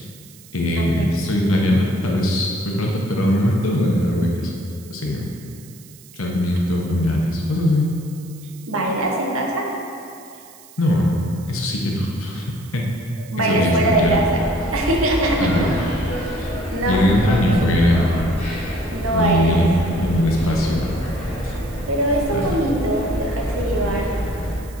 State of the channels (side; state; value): right; noise; hiss, 22 dB below the sound